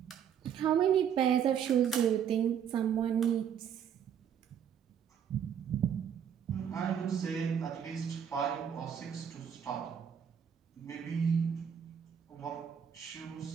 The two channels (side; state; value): left; quieter; 8.4 dB